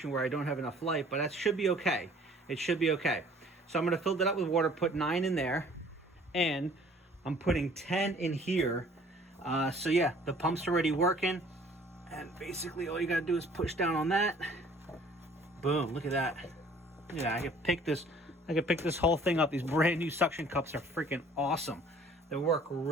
where I don't have enough light, but that should be okay. It should be okay. So I'm gonna fill that up with water, put 9 in there, and I'm putting 10 in here. So yeah, the pump's already working, and basically all you gotta do is push down on that. Boom, look at that. Yeah, I could pick this whole thing up. These brand new suction cups are freaking awesome. They work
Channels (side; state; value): both; normal; correlation 0.54